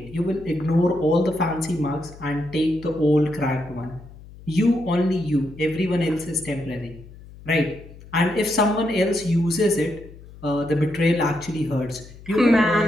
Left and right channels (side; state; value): left; noise; hum, 19 dB below the sound